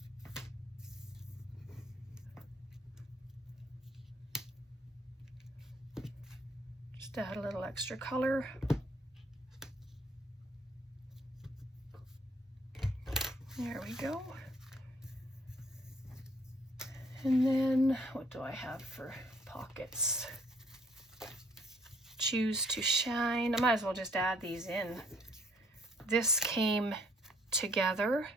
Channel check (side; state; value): both; normal; correlation 0.64